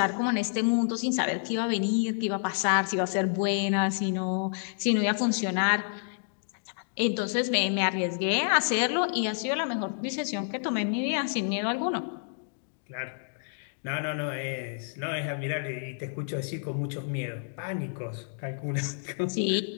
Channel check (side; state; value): right; silent; digital silence